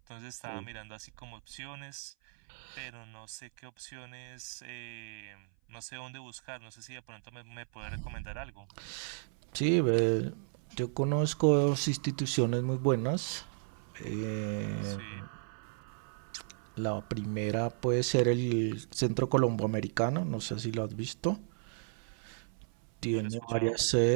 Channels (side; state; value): left; silent; 55 dB below the other